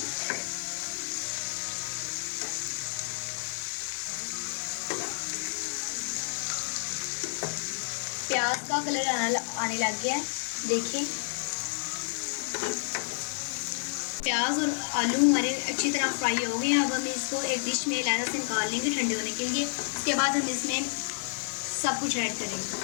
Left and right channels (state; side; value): silent; right; digital silence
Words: प्याज का कलर आने लग गया है, देखिए। प्याज और आलू हमारे अच्छी तरह फ्राई हो गए हैं। अब हम इसको एक डिश में अलग से निकाल लेंगे ठंडे होने के लिए। उसके बाद हम इसमें सब कुछ ऐड